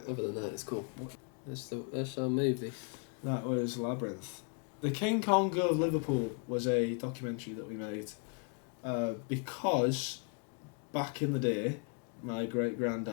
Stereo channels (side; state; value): right; quieter; 38.0 dB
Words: Yeah. other than that, it's cool. That's our movie. That was Labyrinth. The King Kong of Liverpool was a documentary that we made because back in the day, my great